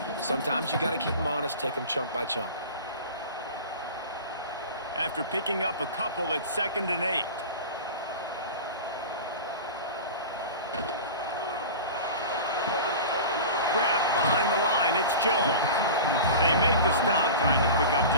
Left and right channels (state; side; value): inverted; both; correlation -0.33